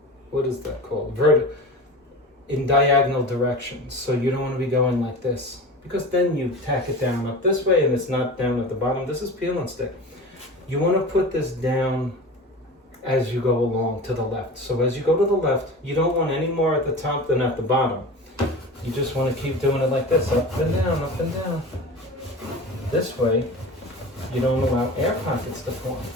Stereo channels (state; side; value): normal; both; correlation 0.33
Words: what is that called? In diagonal directions. So you don't want to be going like this, because then you tack it down up this way and it's not down at the bottom. This is peel and stick. You want to put this down as you go along to the left. So as you go to the left, you don't want any more at the top than at the bottom. You just want to keep doing it like this, up and down, up and down. This way, you don't allow air pockets to form.